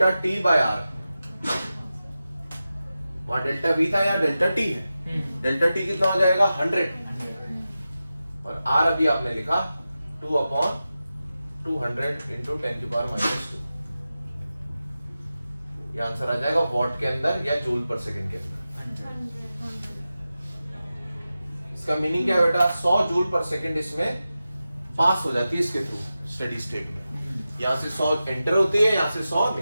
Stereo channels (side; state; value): both; inverted; correlation -0.93